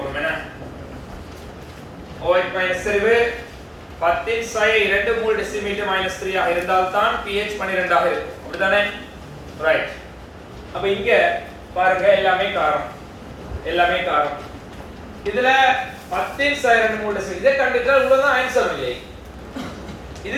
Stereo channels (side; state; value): both; identical; correlation 1.00